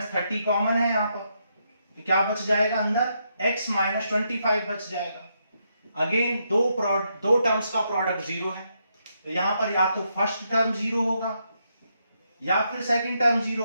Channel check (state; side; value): inverted; both; correlation -0.79